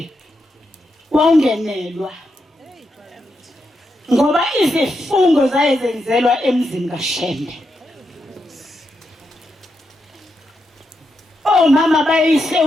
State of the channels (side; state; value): both; normal; correlation 0.84